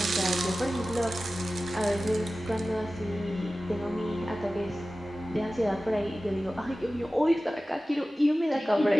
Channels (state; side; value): normal; both; correlation 0.96